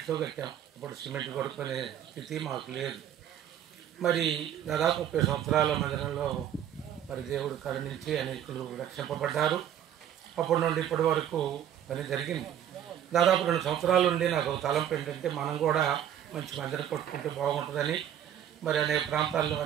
కట్టాం. ఇప్పుడు సిమెంట్ కొడుకునే స్థితి మాకు లేదు. మరి దాదాపు 30 సంవత్సరాల మందిరంలో మరి దేవుడు కరుణించి అనేకులు రక్షింపబడ్డారు. అప్పటి నుండి ఇప్పటి వరకు పని జరిగింది. దాదాపు 2 సంవత్సరాల నుండి నాకు ఒక తలంపు ఏంటంటే మనం కూడా మంచి మందిరం కట్టుకుంటే బాగుంటుందని. మరి అనేక ప్రాంతాల్లో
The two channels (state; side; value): quieter; left; 10.3 dB